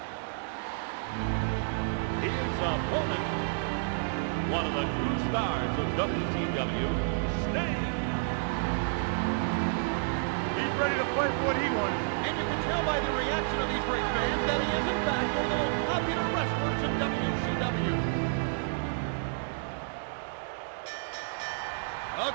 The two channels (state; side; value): silent; left; 58 dB below the other